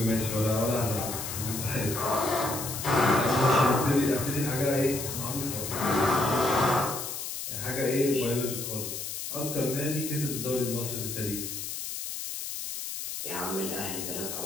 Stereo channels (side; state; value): left; noise; hiss, 6 dB below the sound